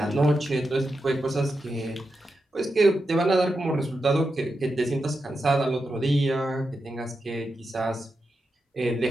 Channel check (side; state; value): both; normal; correlation 0.88